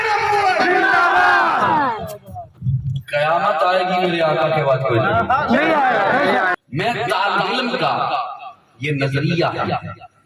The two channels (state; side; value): identical; both; correlation 1.00